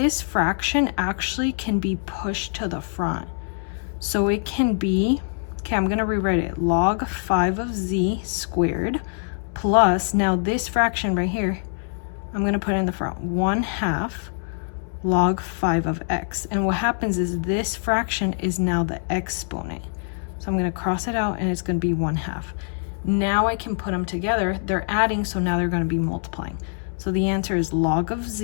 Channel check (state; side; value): silent; right; 63 dB below the other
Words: fraction actually can be pushed to the front. So it can be, okay, I'm going to rewrite it. Log 5 of z squared plus, now this fraction right here, I'm going to put in the front, 1/2 log 5 of x. And what happens is this fraction is now the exponent. So I'm going to cross it out, and it's going to be 1/2. Now I can put them together. They're adding, so now they're going to be multiplying. So the answer is log of